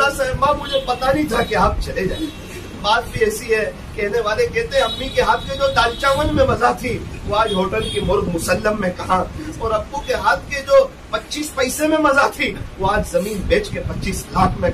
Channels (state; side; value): identical; both; correlation 1.00